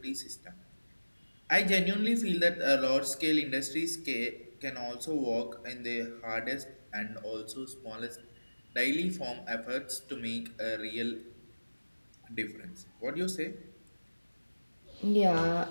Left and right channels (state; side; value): inverted; both; correlation -1.00